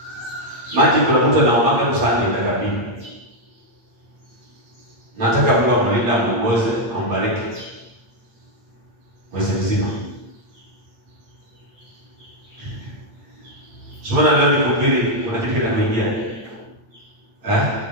Maji kuna mtu anaomba kusanya itakabili. Nataka Mungu amlinde, amuongoze, ambariki mwezi mzima. Sasa leo nikuhubiri, kuna kitu kinakuingia.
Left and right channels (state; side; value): late; left; 8.6 ms